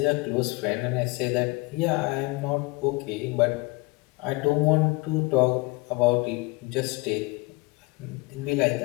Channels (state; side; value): quieter; right; 24.7 dB